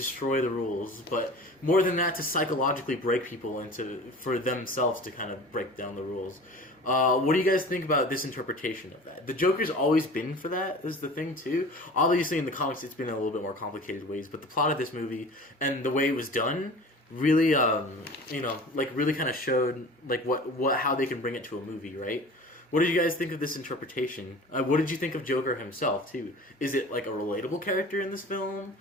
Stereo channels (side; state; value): both; normal; correlation 0.40